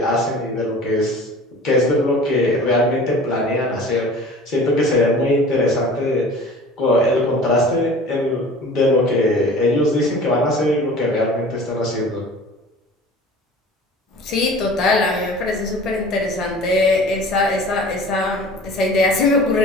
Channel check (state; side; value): normal; both; correlation 0.43